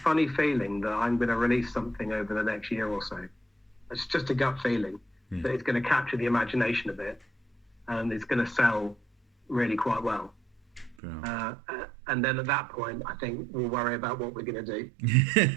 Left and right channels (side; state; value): left; drops out; at 11.0 s